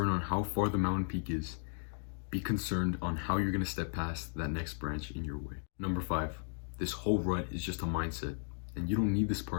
on how far the mountain peak is. Be concerned on how you're gonna step past that next branch in your way. Number 5, this whole rut is just a mindset, and you don't need this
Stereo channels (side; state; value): right; silent; 54 dB below the other